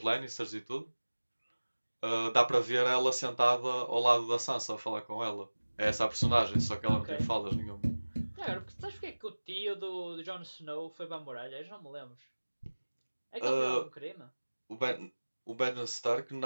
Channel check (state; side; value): inverted; both; correlation -1.00